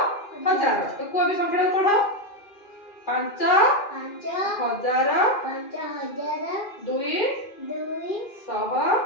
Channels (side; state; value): right; late; 2.4 ms